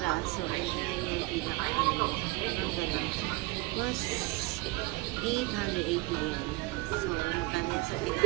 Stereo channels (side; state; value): left; quieter; 22.8 dB